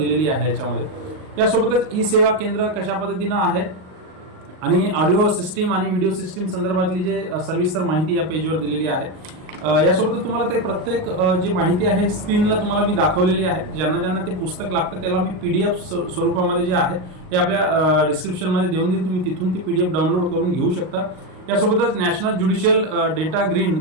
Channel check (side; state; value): left; late; 38 ms